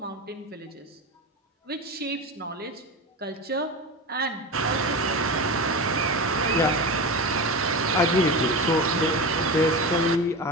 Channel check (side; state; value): both; normal; correlation 0.25